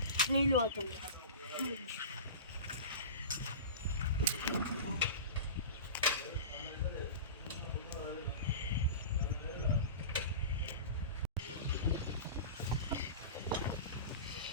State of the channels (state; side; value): inverted; both; correlation -0.31